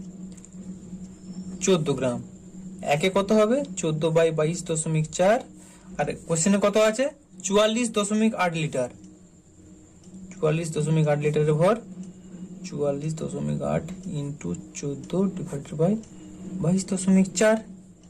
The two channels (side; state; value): both; identical; correlation 1.00